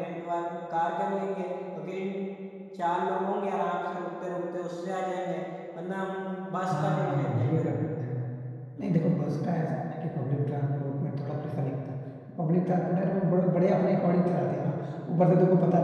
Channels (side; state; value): both; identical; correlation 1.00